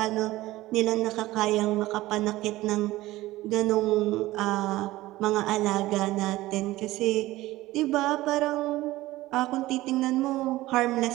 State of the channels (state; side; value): quieter; left; 17.4 dB